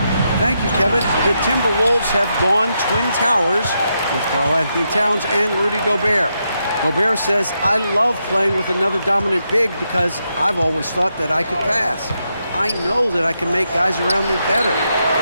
Thank you, Kevin. The Timberwolves have gone Twin Towers with Karl-Anthony Towns and Rudy Gobert. Gobert says, I love playing with another dominant big because I've always thought that I could pass. I know that I can make guys around me better.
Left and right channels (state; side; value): inverted; both; correlation -0.83